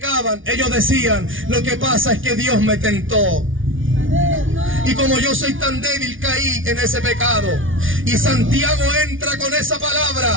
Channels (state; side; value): late; left; 0.57 ms